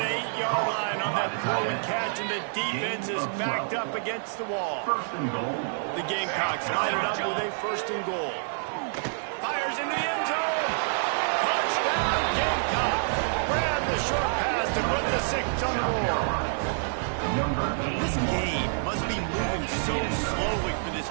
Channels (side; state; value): left; silent; 60 dB below the other